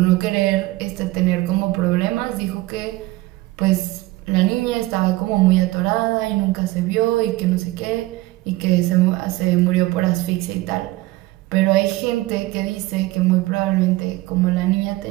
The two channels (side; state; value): left; quieter; 19.4 dB